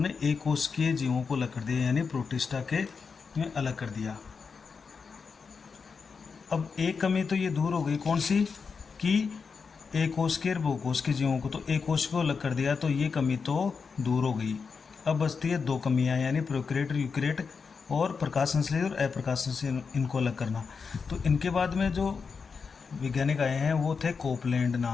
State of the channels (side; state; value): right; quieter; 5.4 dB